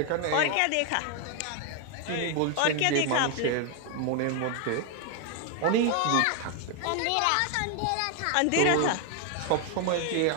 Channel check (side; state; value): both; different; correlation 0.01